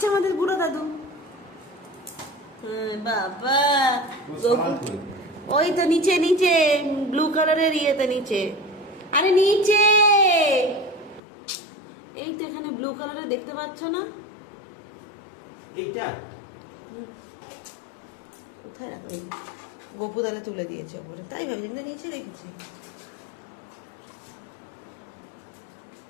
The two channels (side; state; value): right; drops out; at 11.2 s